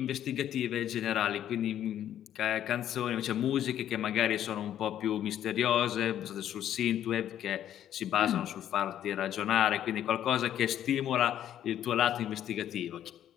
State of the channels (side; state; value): right; quieter; 10.9 dB